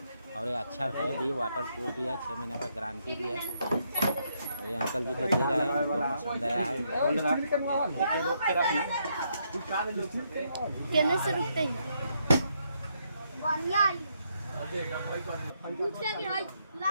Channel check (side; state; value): both; inverted; correlation -0.76